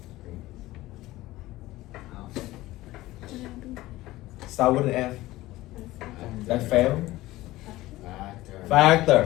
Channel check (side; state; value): right; quieter; 17.4 dB